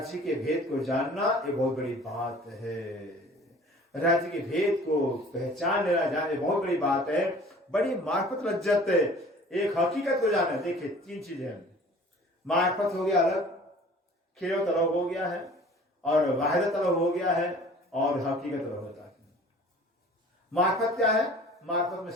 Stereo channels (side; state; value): both; normal; correlation 0.48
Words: के भेद को जानना ये बहुत बड़ी बात है। राज्य के भेद को पहचान लेना जाने बहुत बड़ी बात है, बड़ी मार्फत लज्जत है। एक हकीकत को जानना, देखिए 3 चीजें हैं, मार्फत हो गया अलग, खेल तलब हो गया है, और वाहिदत तलब हो गया है, और हकीकत तलब होता है। मार्फत क्या है? मार्फत में